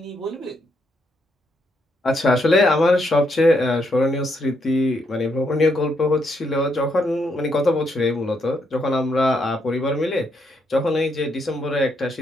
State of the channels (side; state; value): both; normal; correlation 0.77